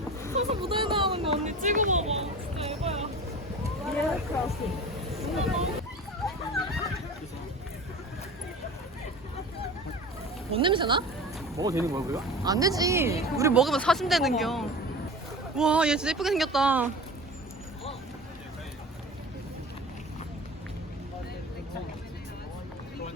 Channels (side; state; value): both; normal; correlation 0.36